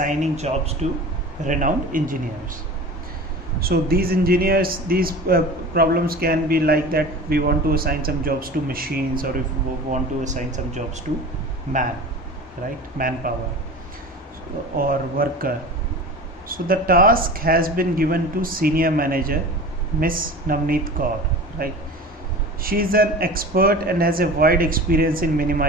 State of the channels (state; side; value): normal; both; correlation 0.36